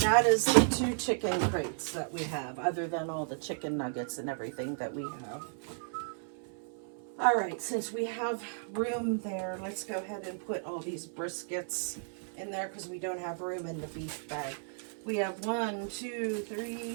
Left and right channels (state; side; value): silent; left; 55 dB below the other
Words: the 2 chicken crates that we have, other than all the chicken nuggets and everything that we have. All right, since we have room there, let's go ahead and put all these briskets in there because we don't have room in the beef bag. We have 1, 2,